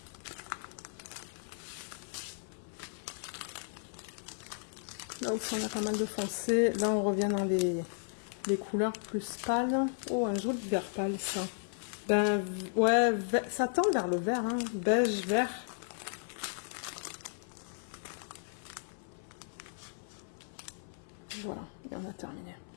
Là aussi, on a pas mal de foncé. Là, on revient dans les couleurs plus pâles. Oh, un joli vert pâle, ça. Ben, ouais, ça tend vers le vert, hein. Beige, vert. Voilà, et on a terminé.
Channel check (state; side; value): silent; right; 55 dB below the other